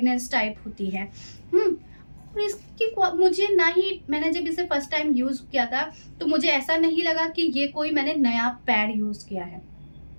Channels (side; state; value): both; inverted; correlation -1.00